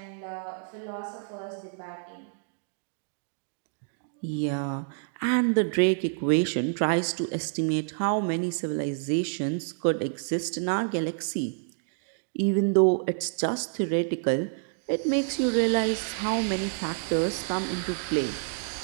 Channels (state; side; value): silent; left; digital silence